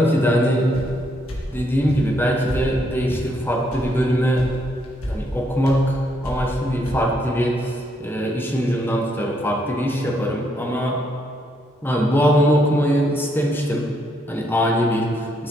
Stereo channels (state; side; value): normal; both; correlation 0.74